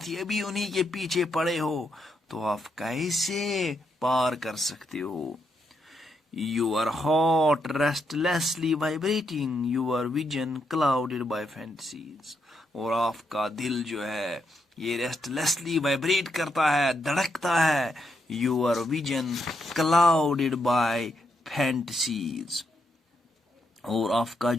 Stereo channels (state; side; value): normal; both; correlation 0.80